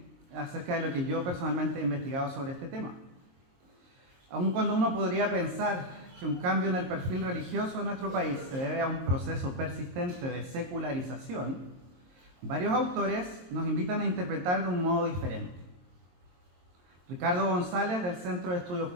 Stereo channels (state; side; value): late; left; 23 ms